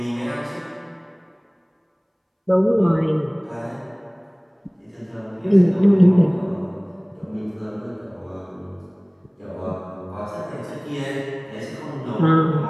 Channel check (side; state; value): both; identical; correlation 1.00